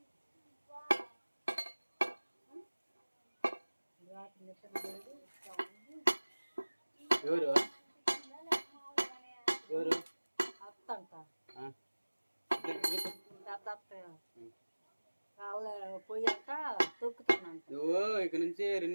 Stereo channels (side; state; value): both; inverted; correlation -1.00